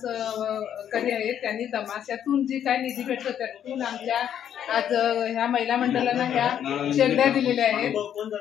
करी आहेत, त्यांनी तमाशातून जी काय निधी भेटतो त्यातून आमच्या आज ह्या महिला मंडळांना ह्या शेगड्या दिलेल्या आहेत।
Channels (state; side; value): quieter; right; 9.6 dB